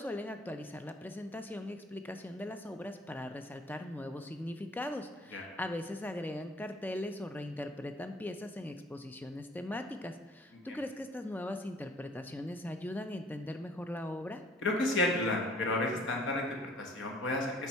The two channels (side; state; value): both; normal; correlation 0.54